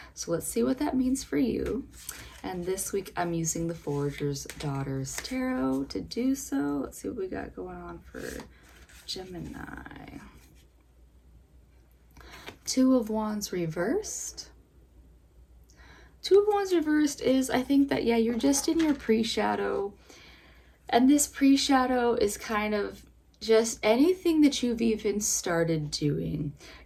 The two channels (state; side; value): identical; both; correlation 1.00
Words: So let's see what that means for you. And this week I'm using the Forager's Daughters Tarot to do so. Let's see what we got going on for Gemini. Two of Wands reversed. Two of Wands reversed is, I think that, you're just in your pre-shadow. And this pre-shadow is kind of just anything that you've even started doing.